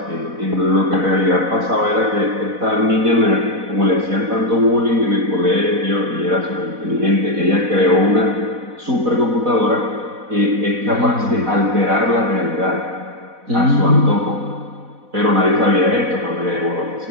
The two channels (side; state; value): left; late; 4.1 ms